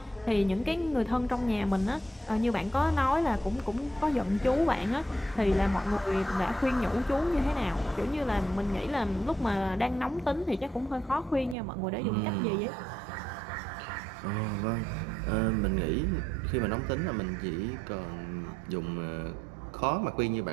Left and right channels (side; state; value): left; drops out; at 11.6 s